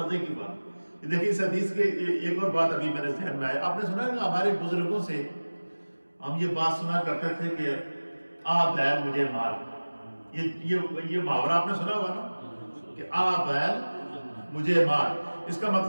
کی بات دیکھیں اس حدیث کے، ایک اور بات ابھی میرے ذہن میں آئی۔ آپ نے سنا ہے کہ ہمارے بزرگوں سے ہم یہ بات سنا کرتے تھے کہ آ بیل مجھے مار، یہ محاورہ آپ نے سنا ہوا نا کہ آ بیل مجھے مار۔ اس کا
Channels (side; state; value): both; inverted; correlation -1.00